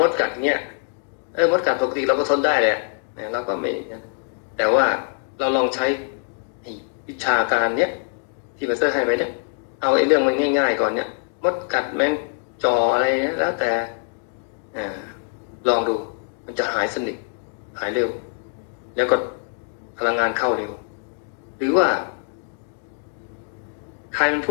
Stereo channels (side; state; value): right; silent; 62 dB below the other